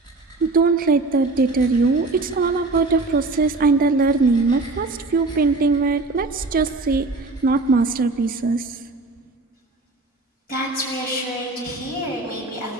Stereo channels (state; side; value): quieter; left; 3.3 dB